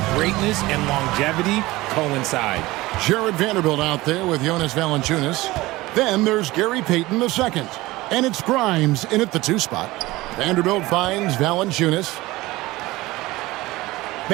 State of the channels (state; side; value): quieter; left; 19.4 dB